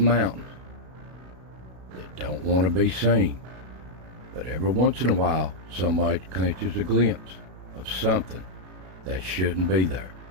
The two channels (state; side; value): late; left; 32 ms